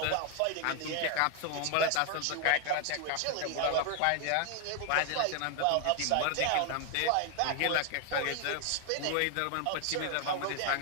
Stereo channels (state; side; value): different; both; correlation 0.00